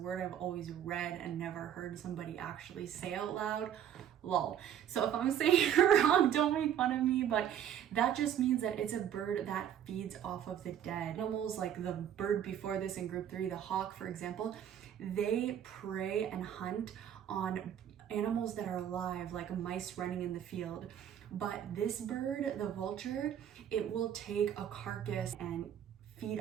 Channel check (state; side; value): quieter; left; 9.8 dB